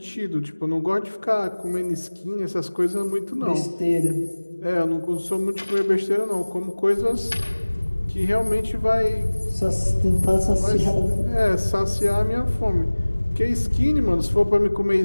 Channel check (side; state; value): both; inverted; correlation -1.00